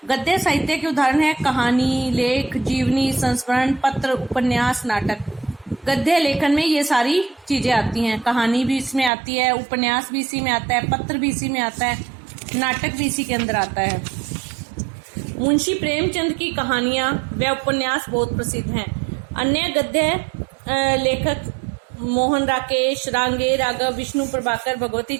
गद्य साहित्य के उदाहरण है कहानी, लेख, जीवनी, संस्मरण, पत्र, उपन्यास, नाटक। गद्य लेखन में ये सारी चीजें आती हैं। कहानी भी इसमें आती है, उपन्यास भी इसी में आता है, पत्र भी इसी में आता है, नाटक भी इसी के अंदर आता है। मुंशी प्रेमचंद की कहानियां व उपन्यास बहुत प्रसिद्ध हैं। अन्य गद्य लेखक मोहन राकेश, रांगे, राघव, विष्णु प्रभाकर, भगवती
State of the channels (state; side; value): drops out; left; at 9.1 s